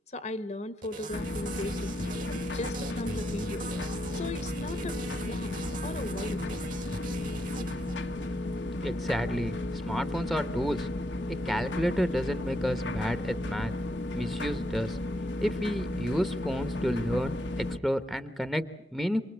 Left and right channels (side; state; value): both; normal; correlation 0.80